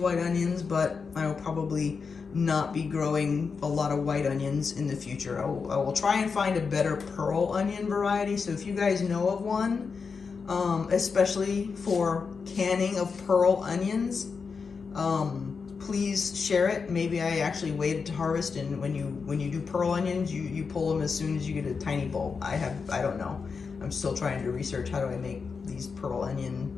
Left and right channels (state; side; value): quieter; right; 5.3 dB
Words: onions, but I will probably not be growing a lot of white onions in the future. I will try and find a better pearl onion variety. So if you guys know of one, especially for canning of pearl onions, please share it. Maybe I actually waited to harvest, and when you do pearl onions, you pull them as soon as you get a tiny bulb. I don't know. I'm still trying to research how do I make these these pearl onion,